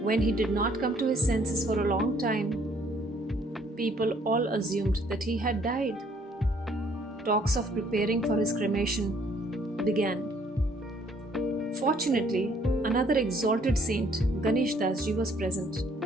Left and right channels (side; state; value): both; normal; correlation 0.63